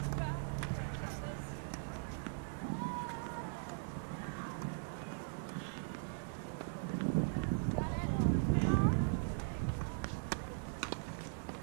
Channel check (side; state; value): left; silent; digital silence